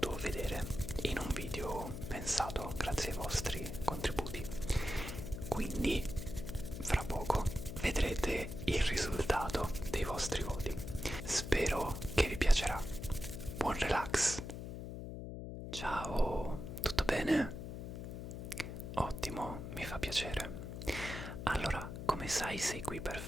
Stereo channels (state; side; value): noise; left; hum, 7 dB below the sound